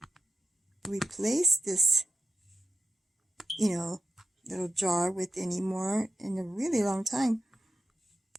replace this, little jar with any more in a really long time.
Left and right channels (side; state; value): both; normal; correlation 0.89